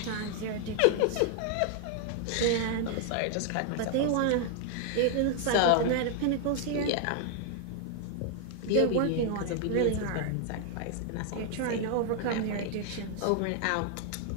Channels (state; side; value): different; both; correlation 0.00